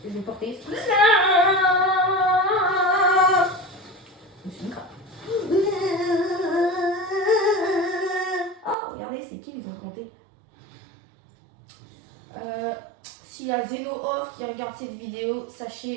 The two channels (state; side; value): drops out; left; at 8.8 s